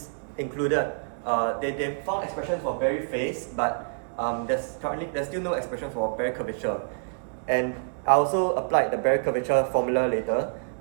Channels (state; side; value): silent; left; digital silence